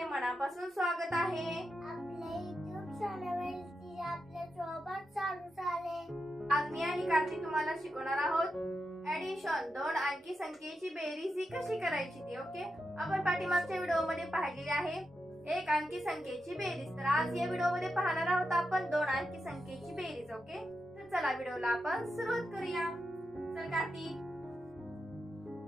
मनापासून स्वागत आहे. आपल्या YouTube चॅनलवरती आपल्या सोबत चालू झाले. आज मी आणि कार्तिक तुम्हाला शिकवणार आहोत ऍडिशन, दोन अंकी संख्येची बेरीज ही कशी करायची ती. ओके, आपण पाठीमागच्या व्हिडिओ मध्ये पाहिलेले आहे एक अंकी संख्येची बेरीज. तर आज या व्हिडिओ मध्ये पाहणार आहोत आपण दोन अंकी संख्येची बेरीज. ओके, तर चला व्हिडिओला आपण सुरुवात करूया. चल कार्तिक,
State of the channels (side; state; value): both; normal; correlation 0.87